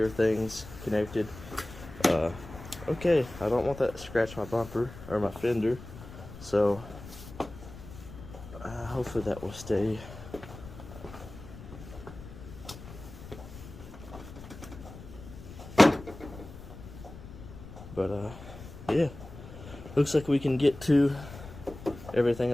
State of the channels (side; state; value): left; noise; rumble, 15 dB below the sound